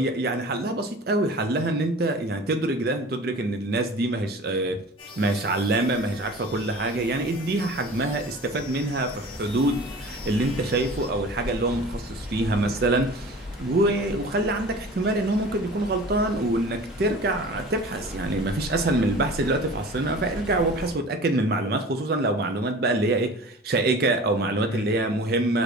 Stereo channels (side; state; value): both; normal; correlation 0.40